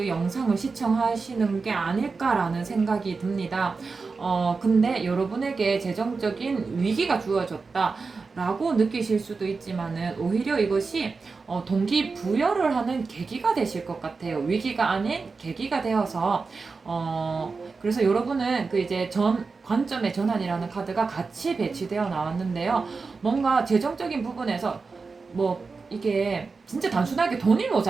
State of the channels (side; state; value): left; quieter; 4.4 dB